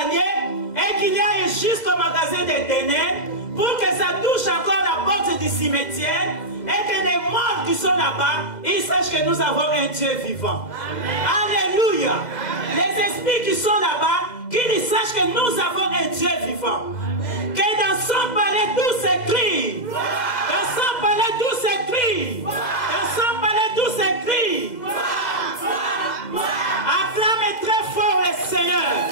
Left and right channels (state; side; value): late; right; 2.0 ms